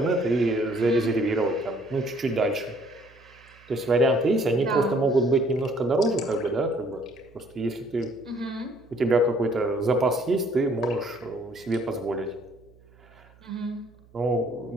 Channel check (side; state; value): right; noise; hum, 27 dB below the sound